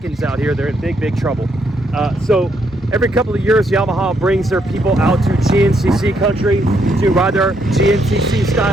out here, they're in big trouble. So every couple of years, Yamaha brings their people out to GNCC country to ride their GNCC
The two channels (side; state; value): both; normal; correlation 0.74